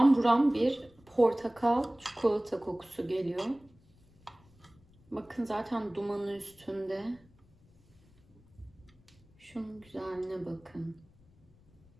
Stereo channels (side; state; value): left; noise; rumble, 29 dB below the sound